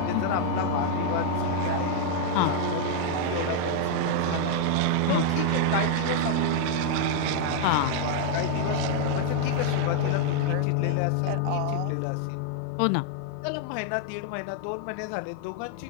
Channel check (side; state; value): both; different; correlation 0.00